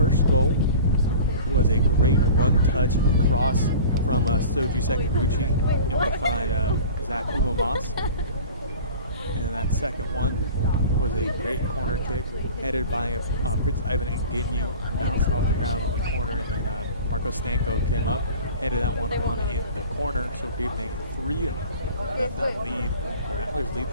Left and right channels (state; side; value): inverted; both; correlation -0.41